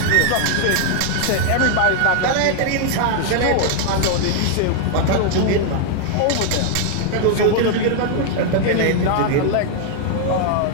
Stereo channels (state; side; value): different; both; correlation 0.00